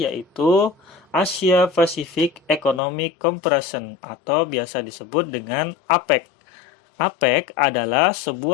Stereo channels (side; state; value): right; drops out; at 2.8 s